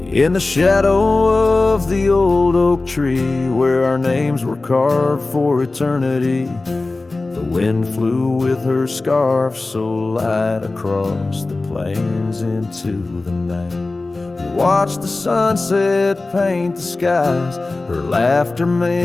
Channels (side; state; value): right; quieter; 3.3 dB